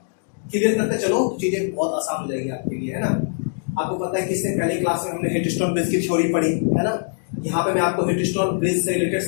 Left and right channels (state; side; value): silent; right; digital silence